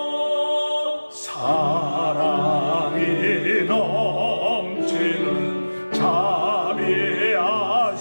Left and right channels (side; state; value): both; inverted; correlation -1.00